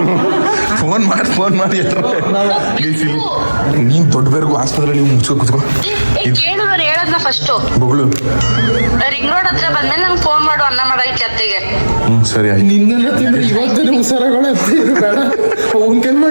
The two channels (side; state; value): both; inverted; correlation -1.00